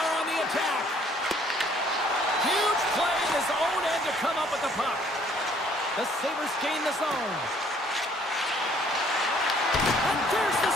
on the attack. Huge play in his own end to come up with the puck. The Sabres gain the zone. And there's the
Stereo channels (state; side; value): normal; both; correlation 0.61